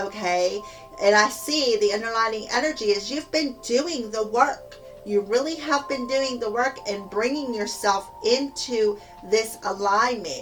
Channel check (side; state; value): both; identical; correlation 1.00